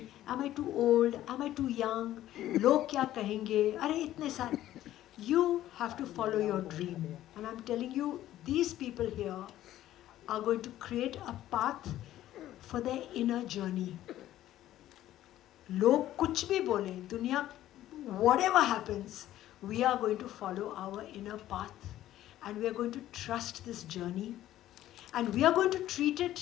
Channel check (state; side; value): quieter; right; 13.5 dB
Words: Am I too old? Am I too young? Log kya kahenge? Are itne sare. You have to follow your dream. And I'm telling you, these people here are going to create a path for their inner journey. Log kuch bhi bole, dunya, whatever happens, we are going to follow our inner path. And we are going to trust this journey. And we are going to treat